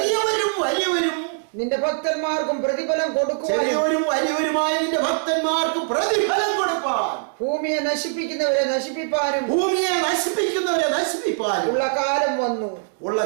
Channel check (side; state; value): left; silent; digital silence